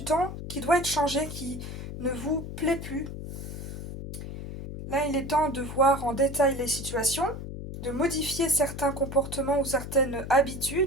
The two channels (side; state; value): left; noise; hum, 8 dB below the sound